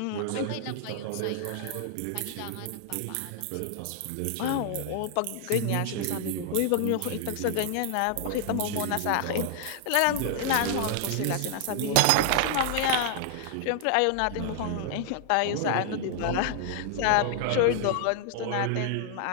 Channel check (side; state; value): both; different; correlation 0.00